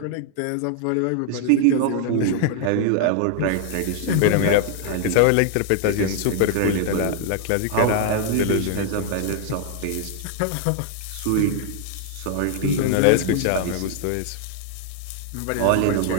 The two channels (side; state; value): both; different; correlation 0.00